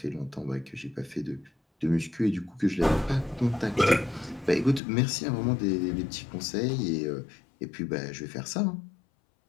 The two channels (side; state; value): right; drops out; at 4.8 s